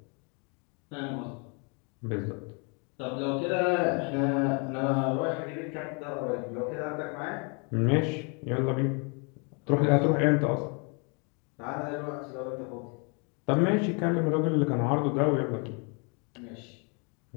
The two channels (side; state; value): right; quieter; 34.8 dB